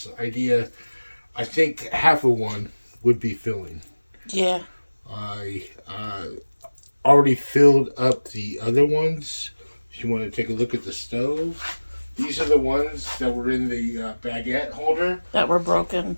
idea, I think half of one would be filling. Yeah. I already filled up the other ones. If you want to take a look at the stove, these are the ones that were in the baguette holder. That were broken.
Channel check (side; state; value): both; inverted; correlation -1.00